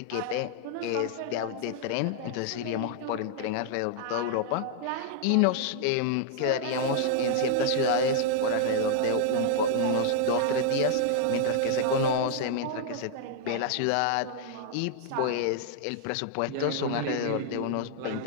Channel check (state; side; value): different; both; correlation -0.01